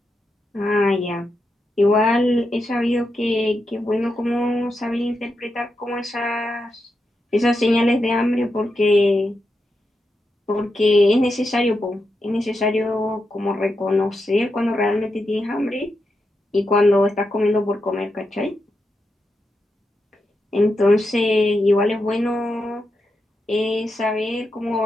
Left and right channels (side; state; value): both; normal; correlation 0.86